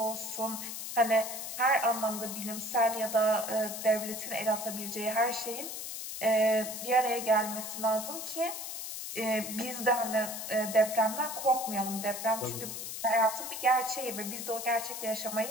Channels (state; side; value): noise; left; hiss, 7 dB below the sound